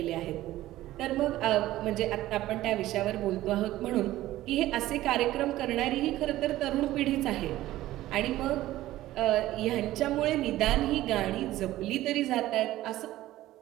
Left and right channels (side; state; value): left; quieter; 15.4 dB